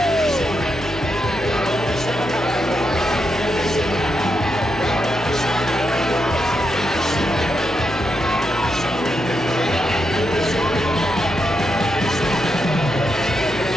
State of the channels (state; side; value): normal; both; correlation 0.83